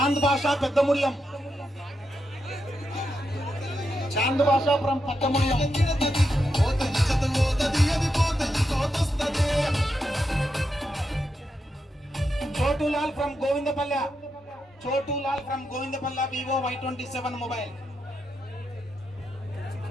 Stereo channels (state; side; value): normal; both; correlation 0.84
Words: భాషా Peddamudiyam. Chand Basha from Peddamudiyam. Chotulal from Govindapalle. Chotulal from Govindapalle. Vivo Y27 mobile.